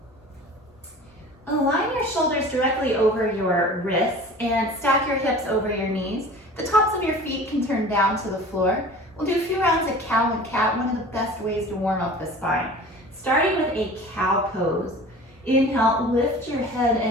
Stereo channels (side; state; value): both; normal; correlation 0.41